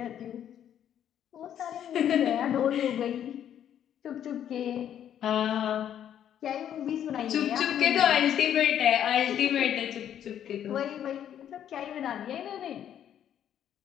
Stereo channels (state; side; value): quieter; right; 10.0 dB